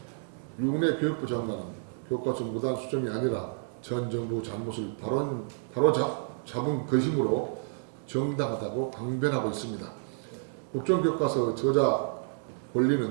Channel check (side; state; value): left; silent; digital silence